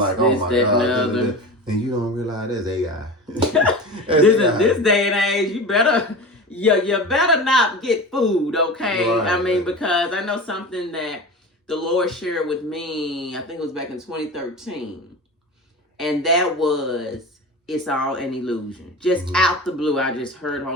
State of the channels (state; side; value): normal; both; correlation 0.31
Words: oh my God. And you don't realize that's AI. This day and age, you better not get food, okay? I mean, because I know something that the Lord shared with me, I think it was back in 2013. And that was, it's all an illusion. Just out the blue, I just heard